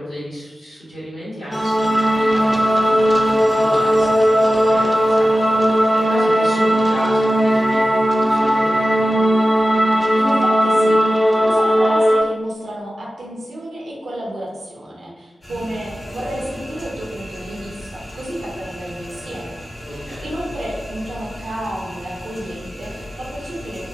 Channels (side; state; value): both; normal; correlation 0.95